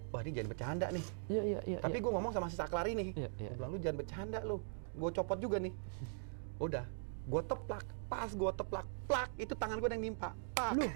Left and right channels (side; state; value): left; silent; digital silence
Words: Wah, ini jangan bercanda nih. Iya. Tapi gue ngomong sama si Saklari nih. Iya. Gue bilang, lu jangan bercanda lu. Gue copot juga nih. Udah, gue teplak. Pas gue teplak, plak, itu tangan gue yang nimpa. Pak.